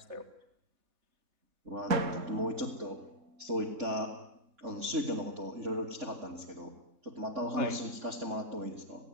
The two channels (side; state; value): left; late; 3.6 ms